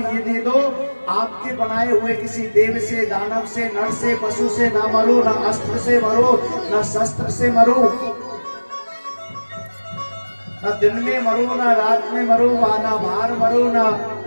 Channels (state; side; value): inverted; both; correlation -1.00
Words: ये दे दो, आपके बनाए हुए किसी देव से, दानव से, नर से, पशु से ना मरो, ना अस्त्र से मरो, ना शस्त्र से मरो, ना दिन में मरो, ना रात में मरो, ना बाहर मरो, ना